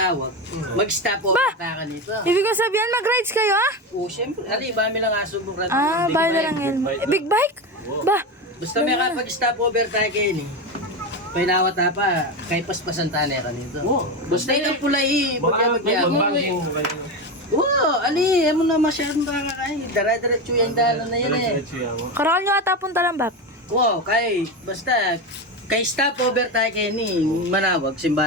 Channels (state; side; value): normal; both; correlation 0.18